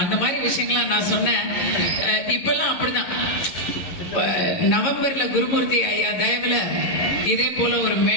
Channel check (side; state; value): right; late; 11 ms